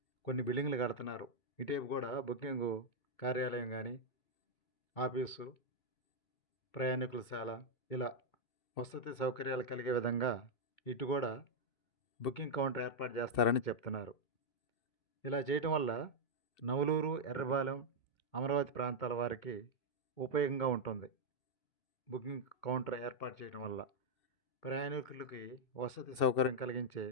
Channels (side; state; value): right; late; 2.7 ms